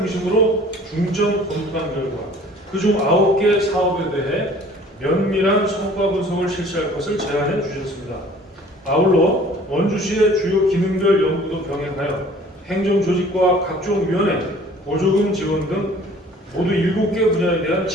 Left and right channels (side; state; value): both; normal; correlation 0.51